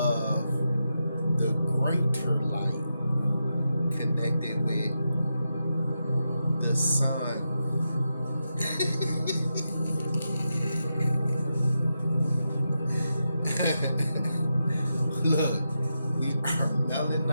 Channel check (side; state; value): both; inverted; correlation -0.87